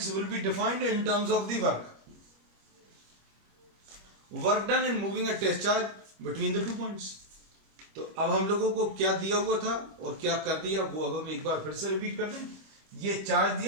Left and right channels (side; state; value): left; late; 25 ms